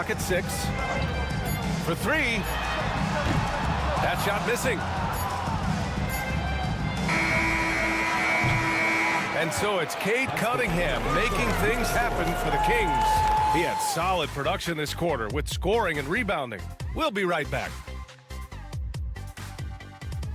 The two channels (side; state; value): both; identical; correlation 1.00